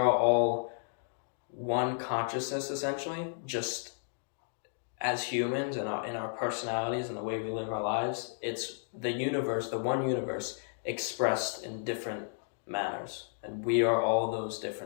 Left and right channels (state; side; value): silent; right; digital silence